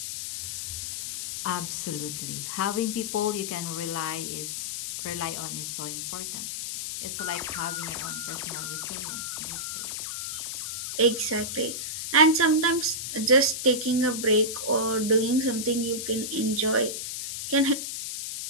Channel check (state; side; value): noise; left; hiss, 4 dB below the sound